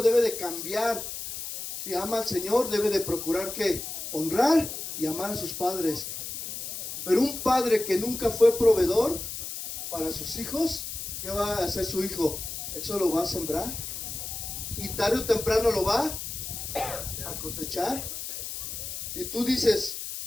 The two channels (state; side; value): noise; left; hiss, 7 dB below the sound